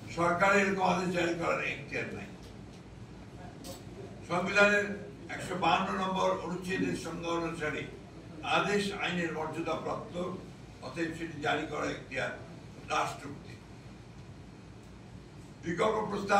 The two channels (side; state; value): both; identical; correlation 1.00